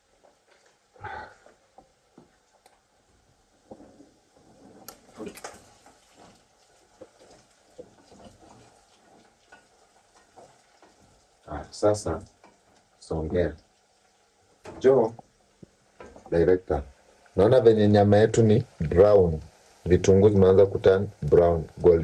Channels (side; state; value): both; identical; correlation 1.00